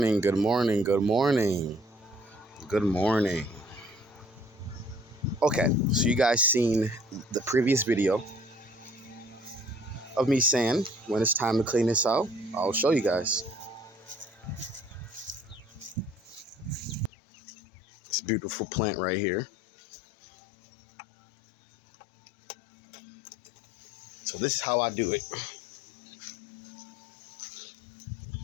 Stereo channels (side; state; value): right; drops out; at 17.1 s